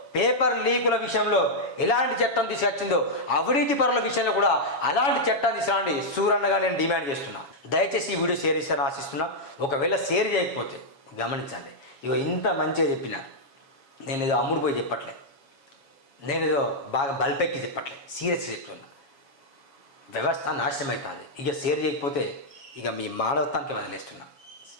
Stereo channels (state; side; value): late; right; 7.2 ms